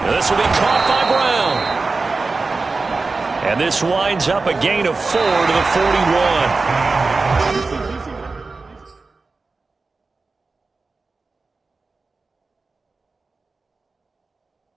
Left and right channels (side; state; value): left; quieter; 3.9 dB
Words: This will be caught by Brown. And this winds up a gain of 4 to the 41.